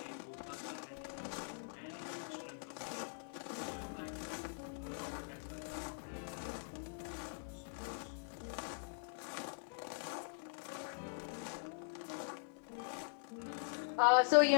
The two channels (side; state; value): right; silent; digital silence